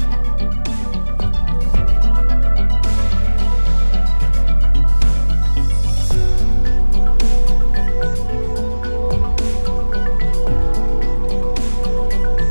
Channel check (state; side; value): inverted; both; correlation -1.00